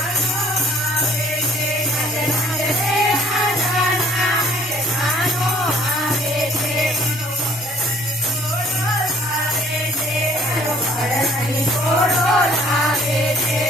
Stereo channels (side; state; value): both; normal; correlation 0.57